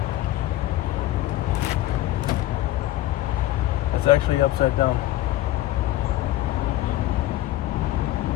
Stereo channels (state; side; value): quieter; right; 15.3 dB